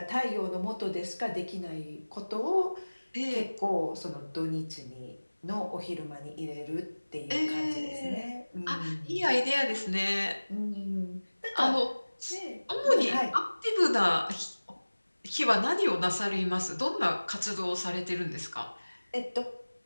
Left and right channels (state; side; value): inverted; both; correlation -1.00